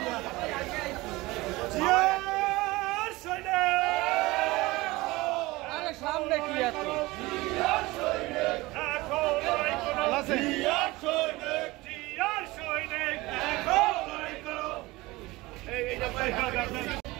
সামনে কি এত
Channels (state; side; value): quieter; left; 20.8 dB